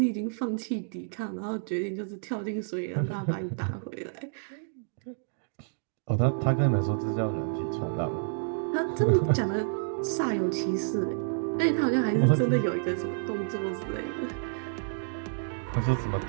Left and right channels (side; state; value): left; silent; digital silence